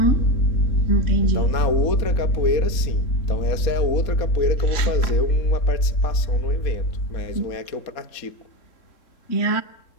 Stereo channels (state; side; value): late; right; 3.6 ms